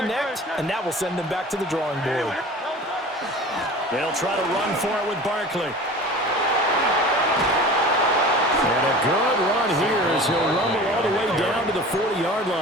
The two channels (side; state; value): both; normal; correlation 0.39